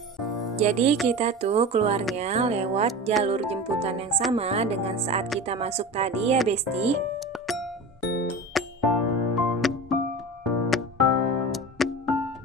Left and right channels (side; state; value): both; normal; correlation 0.31